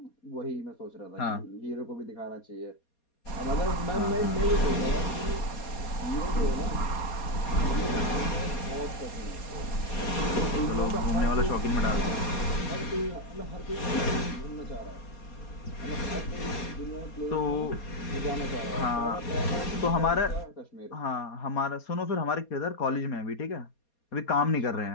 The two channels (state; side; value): late; right; 4.2 ms